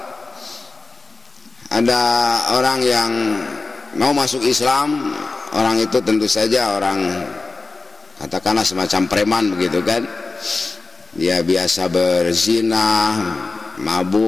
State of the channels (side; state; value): right; quieter; 3.6 dB